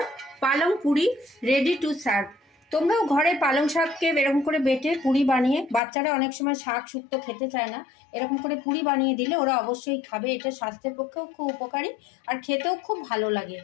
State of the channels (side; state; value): right; drops out; at 5.8 s